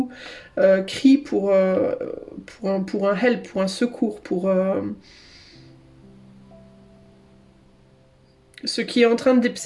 crie pour un help, pour un secours, ce qui est en train de,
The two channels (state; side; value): identical; both; correlation 1.00